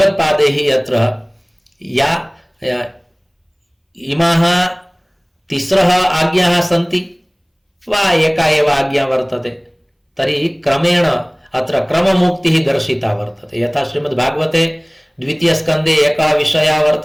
अत्र या इमाः तिस्रः आज्ञाः सन्ति वा एका एव आज्ञा वर्तते तर्हि क्रमेण अत्र क्रममुक्तिः दर्शिता वर्तते यथा श्रीमद्भागवते द्वितीय स्कंदे एकः विषयः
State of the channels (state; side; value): identical; both; correlation 1.00